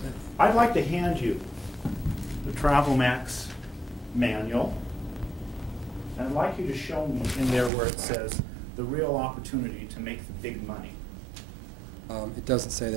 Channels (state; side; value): drops out; left; at 7.7 s